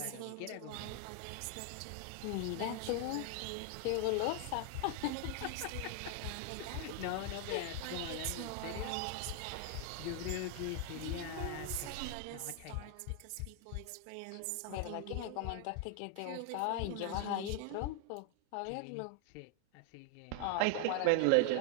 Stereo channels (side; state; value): both; different; correlation 0.00